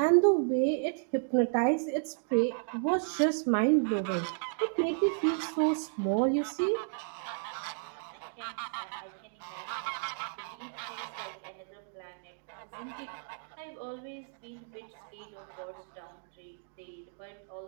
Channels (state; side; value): silent; left; digital silence